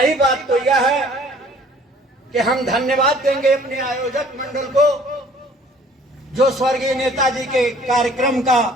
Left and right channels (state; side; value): normal; both; correlation 0.55